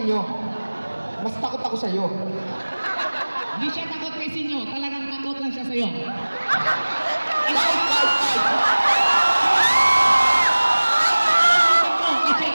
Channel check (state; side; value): inverted; both; correlation -1.00